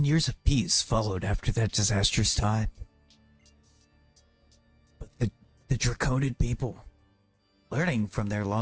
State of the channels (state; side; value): identical; both; correlation 1.00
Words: years of peace followed after that disastrous time. But the Draconian people, learning from their